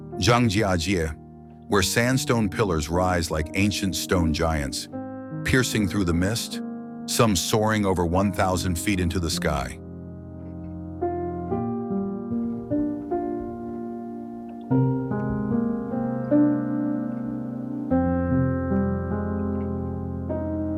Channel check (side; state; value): both; identical; correlation 1.00